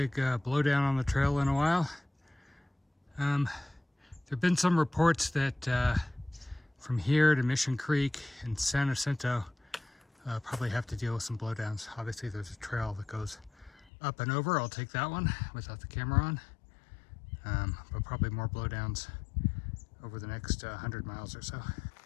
blowdown on the trail in a while. There have been some reports that from here to Mission Creek and San Jacinto probably have to deal with some blowdowns. Obviously there's a trail that goes up and over. I'll take that one without the camera on. But probably more blowdowns over the next 100 miles or so.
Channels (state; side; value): drops out; right; at 13.9 s